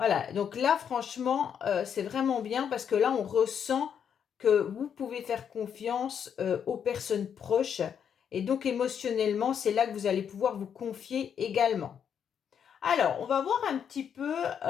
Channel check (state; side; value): quieter; right; 8.0 dB